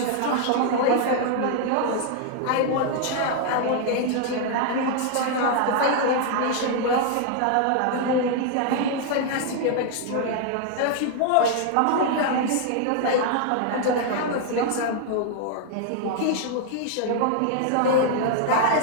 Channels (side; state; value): both; different; correlation 0.00